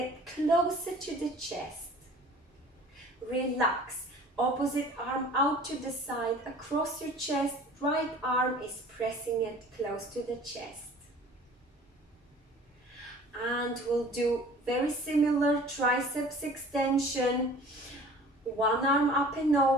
closer to the chest. Relax. Opposite arm out to the side, across your chest. Right arm is pressing it close to the chest. And we'll do very similar triceps extension. One arm up and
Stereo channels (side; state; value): both; normal; correlation 0.47